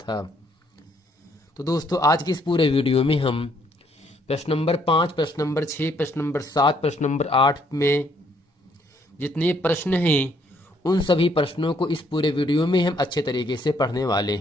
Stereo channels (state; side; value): normal; both; correlation 0.69